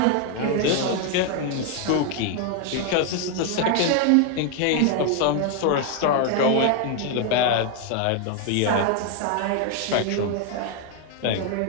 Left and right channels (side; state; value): both; different; correlation 0.01